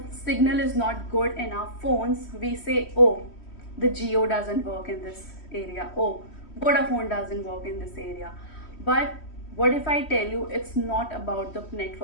signal is not good in our phones, we say, oh, the Jio doesn't work in this area. Oh, Vodafone doesn't work in this area. But what if I tell you it's not about the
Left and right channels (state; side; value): late; right; 3.1 ms